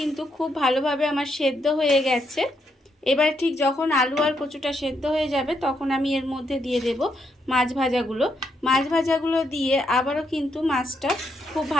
খুব ভালোভাবে আমার সেদ্ধ হয়ে গেছে। এবার ঠিক যখন আলু আর কচুটা সেদ্ধ হয়ে যাবে তখন আমি এর মধ্যে দিয়ে দেব মাছ ভাজাগুলো। মাছ ভাজাগুলো দিয়ে আবারও কিন্তু মাছটা খুব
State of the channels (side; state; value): both; normal; correlation 0.78